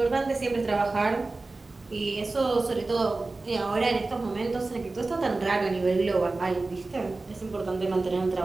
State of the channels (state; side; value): quieter; left; 3.4 dB